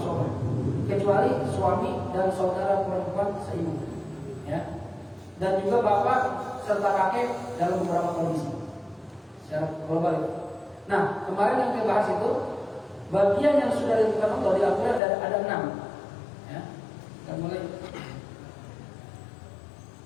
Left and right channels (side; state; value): right; drops out; at 15.0 s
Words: Kecuali suami dan saudara perempuan seibu. Ya. Dan juga bapak serta kakek dalam beberapa kondisi. Secara global itu. Nah, kemarin yang kita bahas itu bagian yang sudah ditentukan Allah di Al-Quran ada 6. Ya, kita mulai.